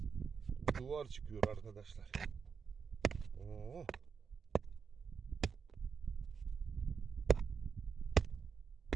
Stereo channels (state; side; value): quieter; left; 6.0 dB